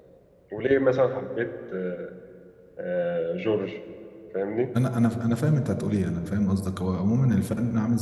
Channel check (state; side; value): identical; both; correlation 1.00